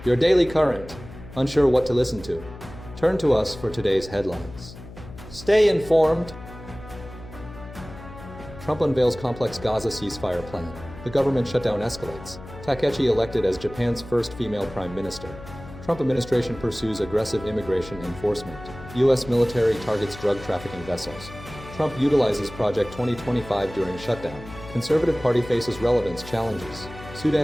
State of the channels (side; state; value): left; noise; hum, 16 dB below the sound